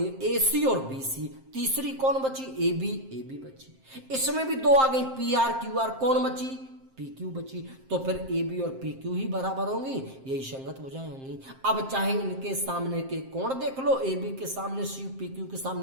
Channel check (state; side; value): late; left; 7.6 ms